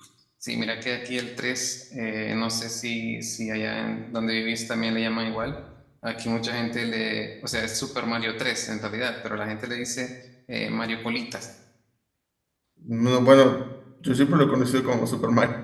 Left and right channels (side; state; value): both; identical; correlation 1.00